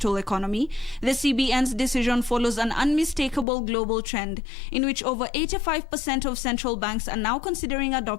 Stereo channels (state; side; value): drops out; right; at 3.5 s